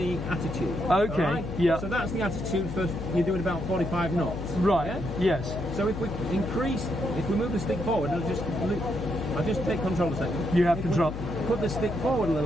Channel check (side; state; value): left; noise; hum, 7 dB below the sound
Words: attitude. Okay, all right? yeah. So that's the attitude for you're doing about 45 knots. Right. Yeah? Yes. So if we move the stick forward, I'll just take control a second. You have If we control. Put the stick forward a